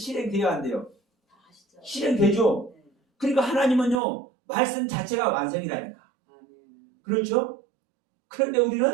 안 돼요. 실행되죠. 그러니까 하나님은요 말씀 자체가 완성이라니까. 그렇죠? 그런데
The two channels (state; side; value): drops out; left; at 4.0 s